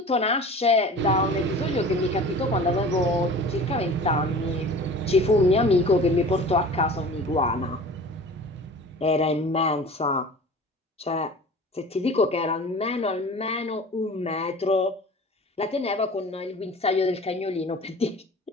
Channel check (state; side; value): normal; both; correlation 0.40